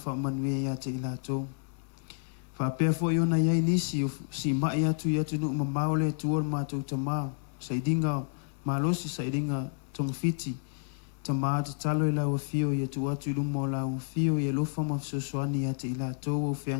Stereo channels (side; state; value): right; silent; digital silence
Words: ia te ilatou. Whapea fo iona iai nisi, si mai atu i atu nuk mamao le tuor mātou tamā. Saidinga malosi, saidinga tongfiti. Tamā te talo i lau fio, ia tu atu i lumo lau fio, ia lofa ma fsoswani ia te ilatou, o